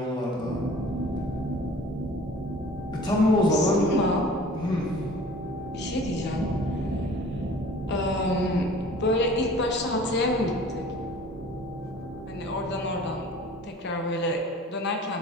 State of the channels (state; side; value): normal; both; correlation 0.46